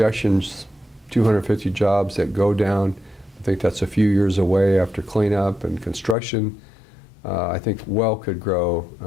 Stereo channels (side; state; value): right; drops out; at 6.2 s